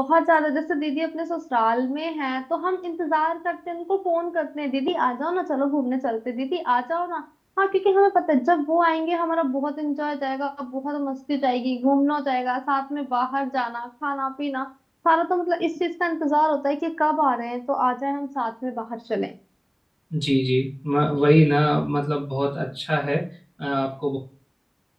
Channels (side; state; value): both; identical; correlation 1.00